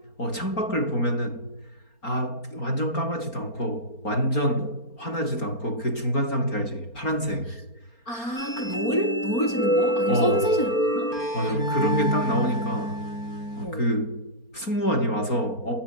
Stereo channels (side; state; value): right; late; 4.3 ms